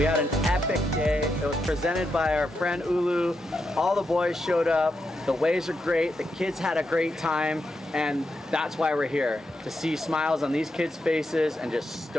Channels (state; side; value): normal; both; correlation 0.84